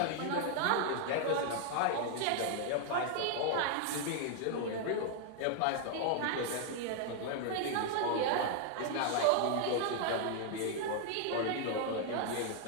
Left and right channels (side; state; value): both; different; correlation 0.00